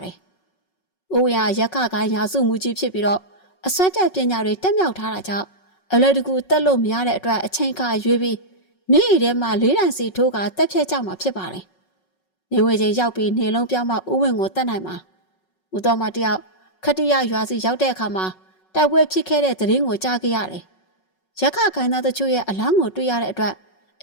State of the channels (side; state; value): right; late; 5.4 ms